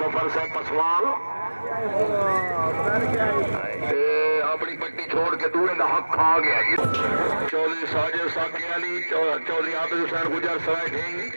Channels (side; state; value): both; inverted; correlation -1.00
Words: सफर से पसवाल अपनी पट्टी छोड़ के दूर का हक खा गया ये चौधरी साजिद साकी अली चौधरी आबिद हुसैन गुजर सराय ढींग